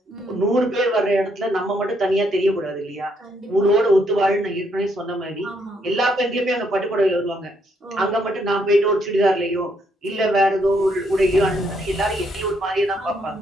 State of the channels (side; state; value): both; normal; correlation 0.73